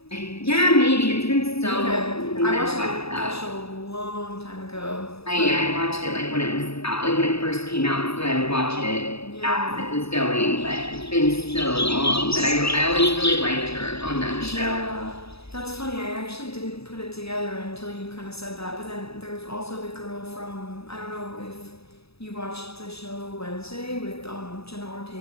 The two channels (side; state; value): right; late; 0.78 ms